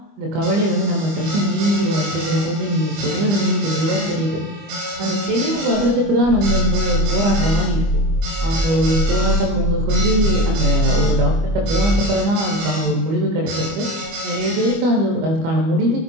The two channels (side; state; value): left; late; 25 ms